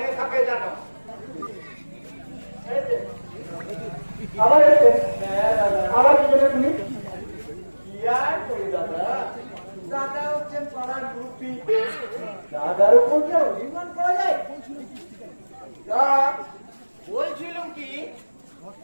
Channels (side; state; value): both; inverted; correlation -1.00